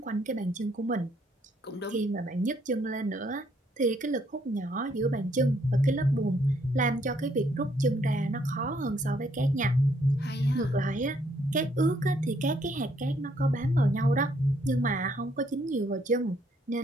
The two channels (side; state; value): both; normal; correlation 0.69